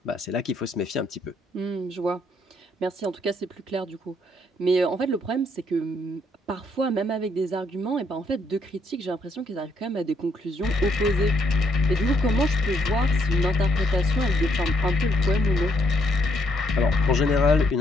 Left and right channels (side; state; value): both; normal; correlation 0.73